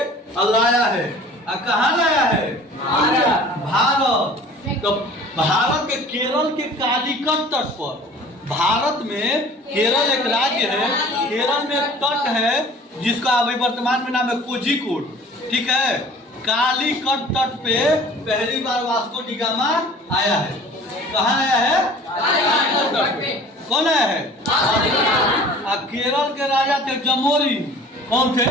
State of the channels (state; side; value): normal; both; correlation 0.47